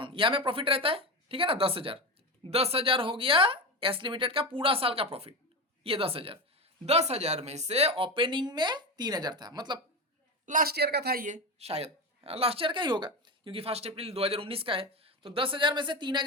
यहां में प्रॉफिट रहता है, ठीक है ना, 10,000 हो गया एस लिमिटेड का पूरा साल का प्रॉफिट, ये 10,000 में से ओपनिंग में 3,000 था, मतलब लास्ट ईयर का था, ये शायद लास्ट ईयर का ही होगा क्योंकि 1 अप्रैल 2019 का है। तो 10,000 में से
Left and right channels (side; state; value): both; normal; correlation 0.19